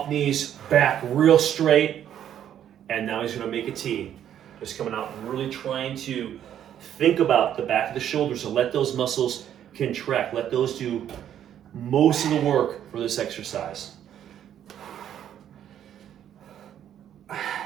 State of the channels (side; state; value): left; quieter; 10.3 dB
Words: knees, back real straight, and now he's going to make a T. Just coming out, really trying to think about the back of the shoulders and let those muscles contract. Let those do most of the work for this exercise.